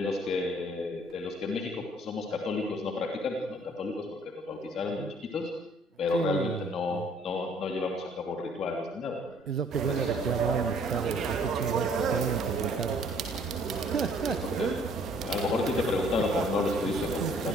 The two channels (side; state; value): both; normal; correlation 0.59